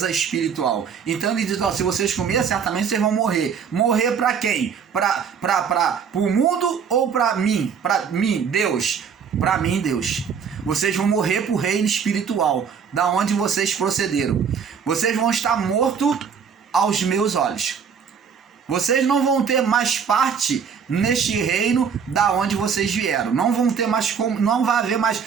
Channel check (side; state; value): left; quieter; 6.8 dB